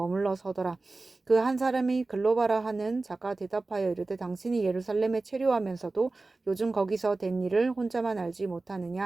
서더라. 그 한 사람이 글로바라 하는 자가 대답하여 이르되 당신이 예루살렘에 체류하면서도 요즘 거기서 된 일을 혼자만 알지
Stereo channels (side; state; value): left; quieter; 3.4 dB